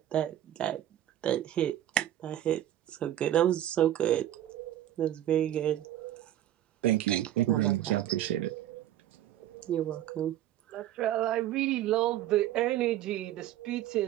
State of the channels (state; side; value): quieter; left; 12.4 dB